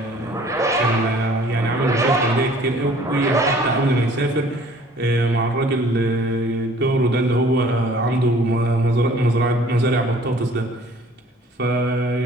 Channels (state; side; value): normal; both; correlation 0.53